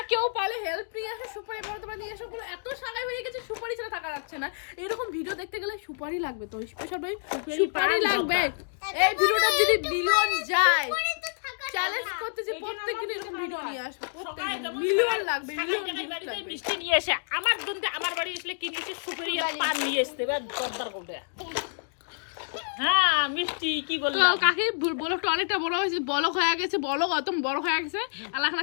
কেউ পালে হেল্প নিয়ে আসো, সুপারি বড় তোমরা নিয়ে এসো, পুরো এত সাগাই হয়ে গেছে সুপারি ছাড়া থাকা যাচ্ছে না, এরকম ভিডিও দেখতে গেলে সুপারি লাগবে, তো স্পেশাল ভাই সুপারি লাগবে। এই ভিডিওটা যদি মিলিয়ন যায় চ্যালেঞ্জ করতেছি প্রত্যেকদিন এরকম ভিডিও নিয়ে আসবো, প্রত্যেকদিন মিলিয়ন লাগবে, মিলিয়ন ভিউজ বাড়িতে লাগবে। মিষ্টি নিয়ে এসে আমার জন্য আমার বাড়ি আসলে কি নিয়ে এসে সুপারি আর পান নিয়ে আসতে হবে দরদার কোটে। হ্যাঁ মিষ্টি কি তো বলবো কাকি বলকটা অনেকটা বড় হয়েছে, বলক হয়ে গেছে, বলক অত বড় হয়ে গেছে, আর এখন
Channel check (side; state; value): right; silent; digital silence